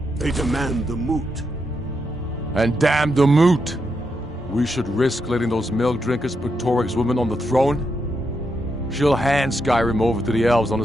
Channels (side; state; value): both; normal; correlation 0.82